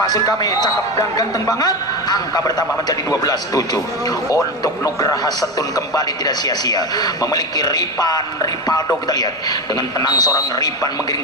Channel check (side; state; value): both; normal; correlation 0.19